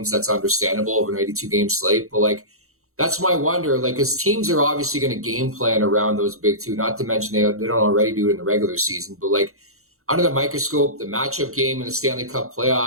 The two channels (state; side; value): late; left; 0.63 ms